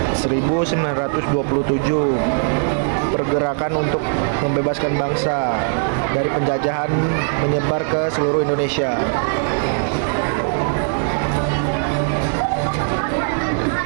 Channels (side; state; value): left; silent; 60 dB below the other